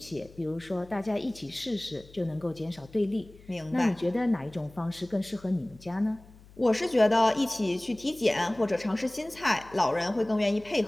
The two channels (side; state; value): left; noise; hum, 23 dB below the sound